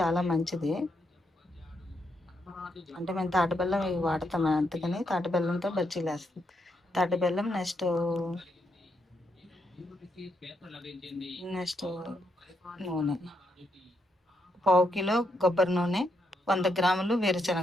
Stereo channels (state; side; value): normal; both; correlation 0.80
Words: మంచిది. అంటే మేము తాటి బెల్లం ఇవి వాడతాము, అందుకని తాటి బెల్లంతో బజ్జీలు వేస్తాం. తాటి బెల్లం నెక్స్ట్ నూనె, 1/2 కిలో కొబ్బరి నూనె, 100 గ్రాములు